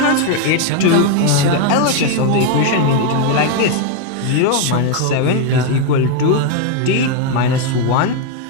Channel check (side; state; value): both; different; correlation 0.01